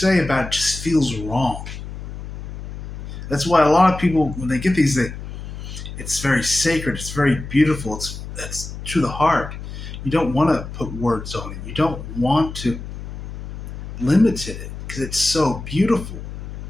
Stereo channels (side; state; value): left; noise; hum, 9 dB below the sound